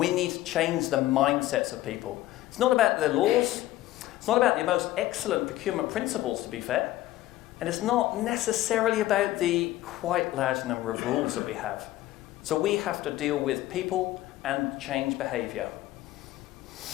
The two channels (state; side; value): quieter; right; 15.5 dB